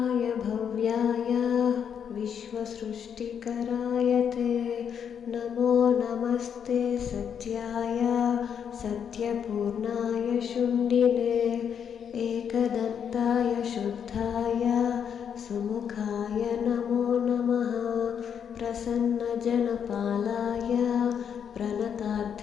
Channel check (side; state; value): right; quieter; 7.9 dB